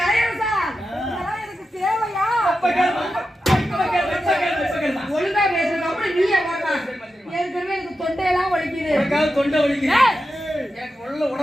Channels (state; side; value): normal; both; correlation 0.90